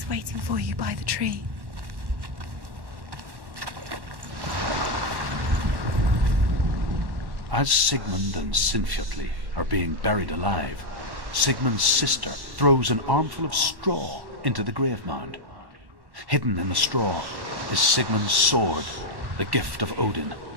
waiting for you by the tree. As Sigmund and Sinfjotli are being buried alive, Sigmund's sister throws an armful of straw into the grave mound. Hidden in the straw is Sigmund's sword, the gift of Odin.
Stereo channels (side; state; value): left; late; 1.1 ms